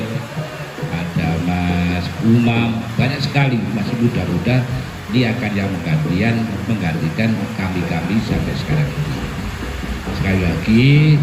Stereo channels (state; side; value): identical; both; correlation 1.00